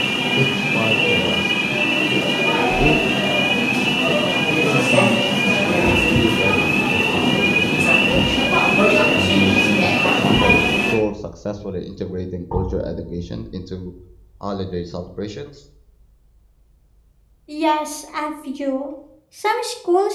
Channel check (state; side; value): identical; both; correlation 1.00